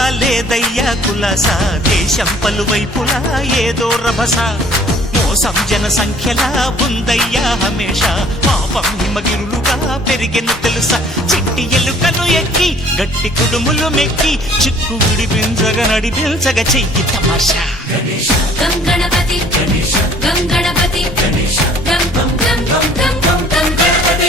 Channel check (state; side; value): normal; both; correlation 0.55